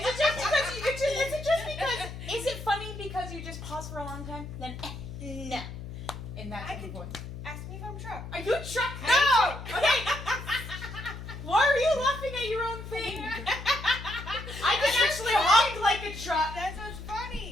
it just because? Is it funny because you just pause for a long time? Then no. In that type of voice. Ask me if I'm a truck. Are you a truck? No. Okay. Why are you laughing at your own thing? I can actually honk like a truck. That's what's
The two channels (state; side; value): noise; left; hum, 10 dB below the sound